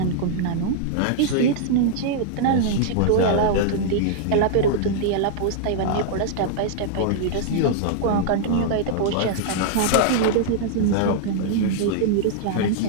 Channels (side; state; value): both; different; correlation -0.01